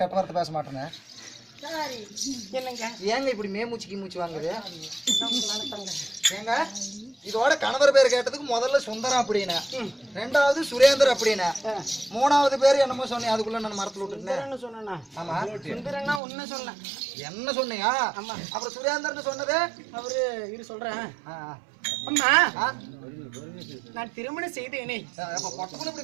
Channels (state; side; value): drops out; left; at 16.2 s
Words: கெட்ட வார்த்தை பேச மாட்டேன்னு என்னங்க ஏங்க இப்படி மேமூச்சிக்கு மூச்சு வாங்குது ஏங்க இதோட கணவர் பேர் கேட்டதுக்கு முதல்ல சுந்தரம் அப்படின்னு ரெண்டாவது சுரேந்தர் அப்படின்னு மூணாவது பேர் என்னமோ சொன்னேன் அதுக்குள்ள நான் மரத்துல விட்டுட்டேன் சொன்னா ஆமா சுந்தரன்னா உன்ன சொன்னேன் என்ன சொன்னியா ஆமா அப்புறம் சுரேந்தர்னு சொன்னது அவரு இரு சொல்றேன் அம்மா நான் திருமணம் செய்தேனே பொட்டக்குள்ள